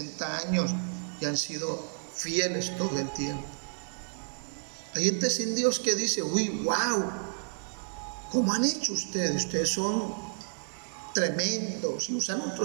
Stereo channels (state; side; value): silent; left; digital silence